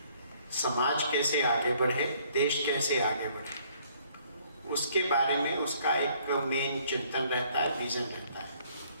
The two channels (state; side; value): inverted; both; correlation -0.62